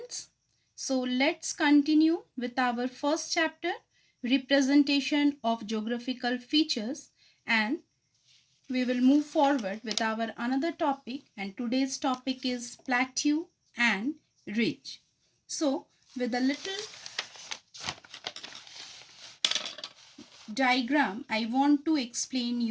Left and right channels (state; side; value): identical; both; correlation 1.00